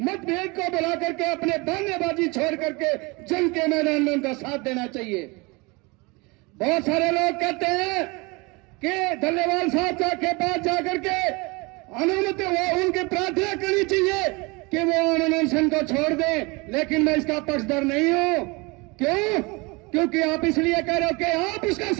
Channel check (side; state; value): left; quieter; 26.6 dB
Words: मतभेद को बुला करके अपने बहानेबाजी छोड़ करके जंग के मैदान में उनका साथ देना चाहिए। बहुत सारे लोग कहते हैं कि डल्लेवाल साहब के पास जाकर के अनुमति उनकी प्रार्थना करनी चाहिए कि वो अनशन को छोड़ दें, लेकिन मैं इसका पक्षधर नहीं हूं। क्यों? क्योंकि आप इसलिए कह रहे हो कि आप उसका